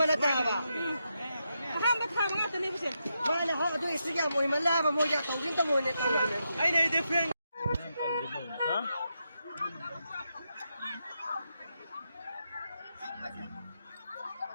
大吧？他们他们那真的不行。那你好多时间没来吧？没家到底怎么的？哎，那的 friend。啊？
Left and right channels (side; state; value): both; inverted; correlation -0.84